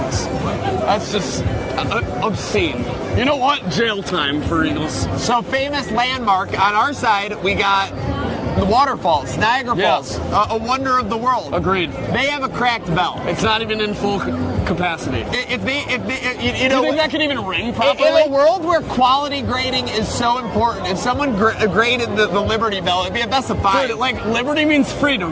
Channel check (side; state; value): both; identical; correlation 1.00